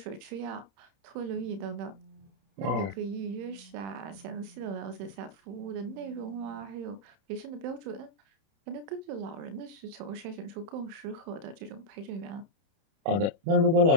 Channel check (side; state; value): left; late; 31 ms